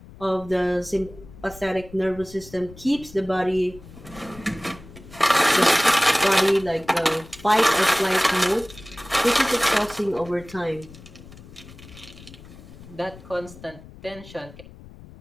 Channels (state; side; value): noise; left; rumble, 19 dB below the sound